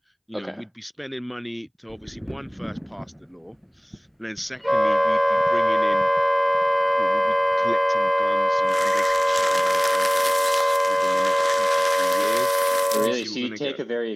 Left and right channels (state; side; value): identical; both; correlation 1.00